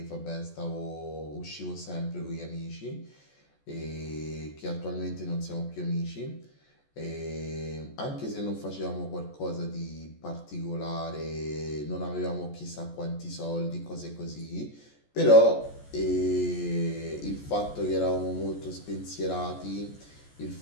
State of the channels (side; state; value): right; late; 14 ms